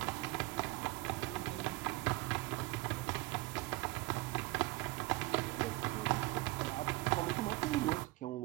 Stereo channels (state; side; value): quieter; left; 20.8 dB